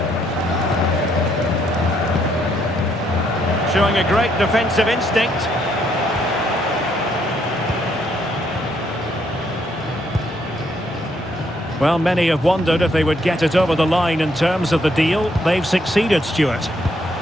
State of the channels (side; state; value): both; normal; correlation 0.72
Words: Showing a great defensive instinct. Well, many have wondered if they would get it over the line in terms of the deal. They've succeeded, Stuart.